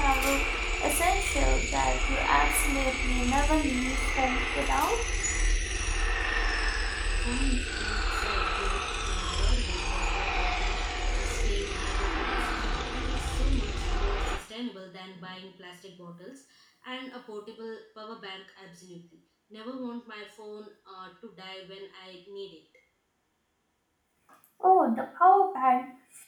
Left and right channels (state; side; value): identical; both; correlation 1.00